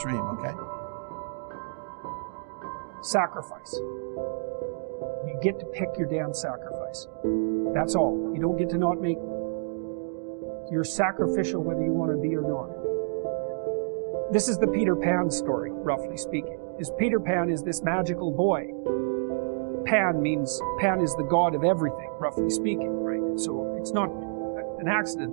okay? Sacrifice. You get to pick your damn sacrifice. That's all. You don't get to not make one. You're sacrificial whether you want to be or not. This is the Peter Pan story, roughly speaking. Peter Pan is this magical boy. Pan is the god of everything, roughly speaking, right? So it's not an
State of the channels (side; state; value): left; silent; digital silence